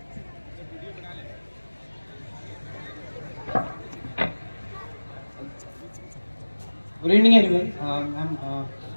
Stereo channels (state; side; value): inverted; both; correlation -1.00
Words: Good evening, everyone.